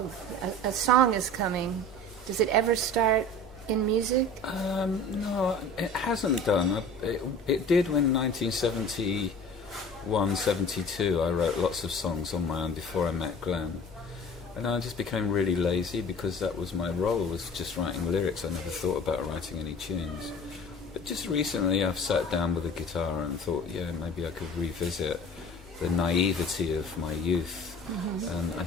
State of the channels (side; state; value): both; normal; correlation 0.43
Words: Oh, a song is coming. Does it ever start in music? No, it hasn't done. It did when 1971, 72. I wrote lots of songs on my own before I met Glenn. And I just became really lazy because that was my role, was just writing lyrics. I never thought about writing any tunes. But just recently I've sat down with a guitar and thought, yeah, maybe I could revisit the naivety of my youth. And I